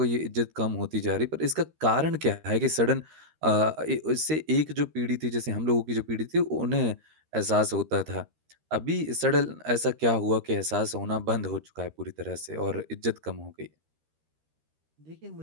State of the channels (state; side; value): late; left; 13 ms